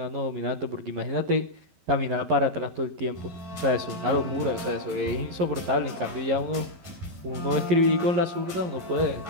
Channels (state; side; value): late; left; 11 ms